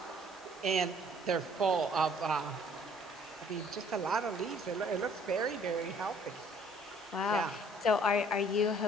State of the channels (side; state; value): both; normal; correlation 0.58